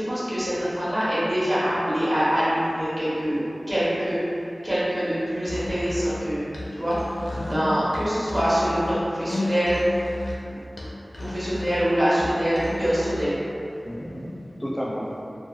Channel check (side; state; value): both; normal; correlation 0.98